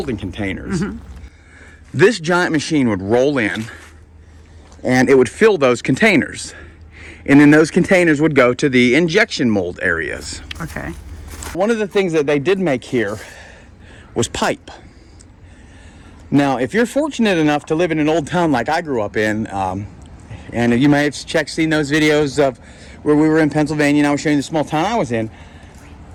containers, this giant machine would roll in and it would fill those containers. And then those containers would go to the injection mold areas. Okay. One of the things that they did make here was pipe. Now, if you're fortunate enough to live in an old town like I grew up in, and you may have seen those videos of where we were in Pennsylvania and I was showing you the small town I was in,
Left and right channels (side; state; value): both; identical; correlation 1.00